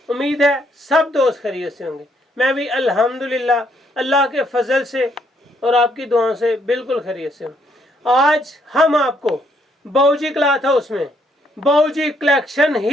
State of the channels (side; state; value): both; normal; correlation 0.71